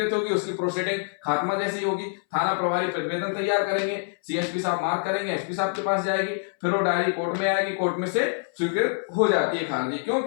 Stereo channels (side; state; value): right; silent; 61 dB below the other